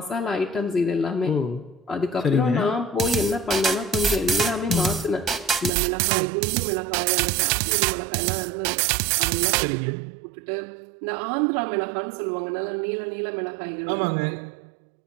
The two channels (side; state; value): left; drops out; at 5.7 s